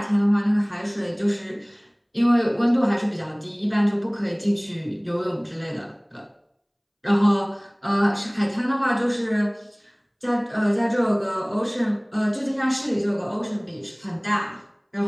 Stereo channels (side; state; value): both; identical; correlation 1.00